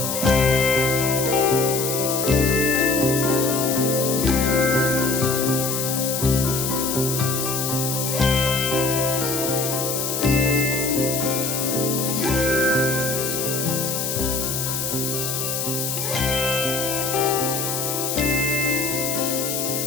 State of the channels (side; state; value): left; noise; hiss, 2 dB below the sound